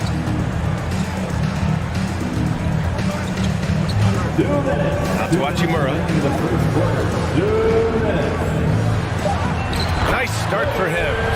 Out to Hachimura. Nice start for him,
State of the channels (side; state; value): both; identical; correlation 1.00